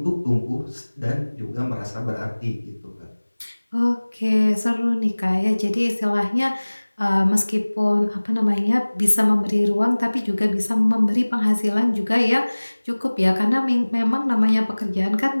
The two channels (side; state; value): both; inverted; correlation -1.00